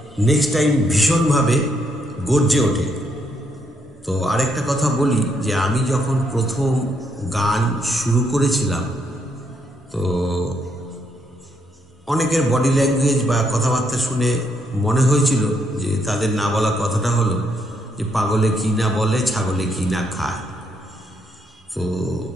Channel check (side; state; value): both; normal; correlation 0.75